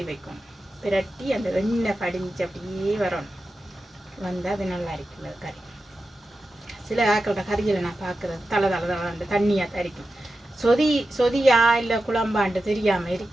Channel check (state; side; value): normal; both; correlation 0.91